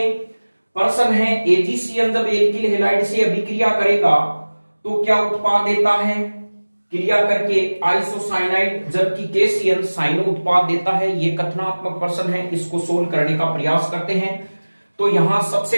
प्रश्न है एजीसीएन जब एल्किल हैलाइड से अभिक्रिया करेगा तो क्या उत्पाद देता है क्रिया करके आइसोसाइनाइड जबकि केसीएन साइनो उत्पाद देता है। यह कथनात्मक प्रश्न है, इसको सोल्व करने का प्रयास करते हैं। तो यहां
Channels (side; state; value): both; inverted; correlation -1.00